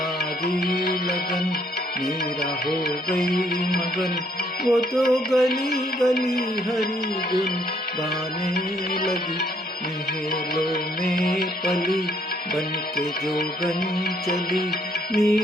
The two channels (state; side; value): normal; both; correlation 0.68